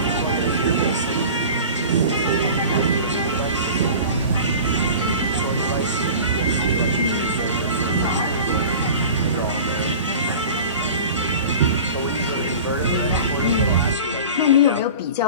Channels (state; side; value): inverted; both; correlation -0.37